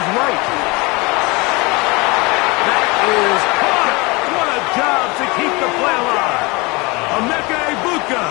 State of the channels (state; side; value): quieter; right; 25.9 dB